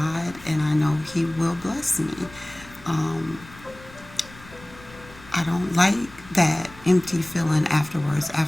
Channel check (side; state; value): left; noise; rumble, 20 dB below the sound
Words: and I know He will bless me. Um, I don't like that empty feeling afterwards.